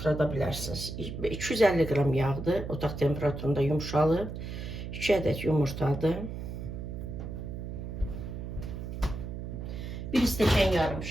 bilərsiniz. 250 qram yağdır, otaq temperaturunda yumuşalıb. 2 ədəd yumurtadır. 1 stəkan yarım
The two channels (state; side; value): noise; right; hum, 7 dB below the sound